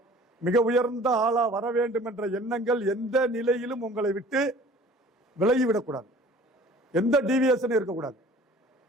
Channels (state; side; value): normal; both; correlation 0.48